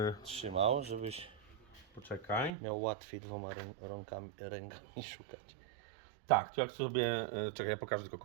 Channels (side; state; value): left; drops out; at 2.5 s